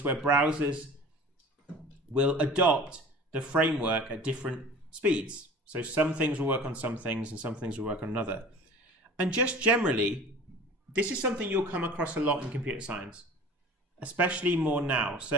where browsers will adopt the framework at different speeds. So some things will work on some things and some things will work on another. And just generally, this is something you'll come across a lot in computer science, especially more now.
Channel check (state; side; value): normal; both; correlation 0.42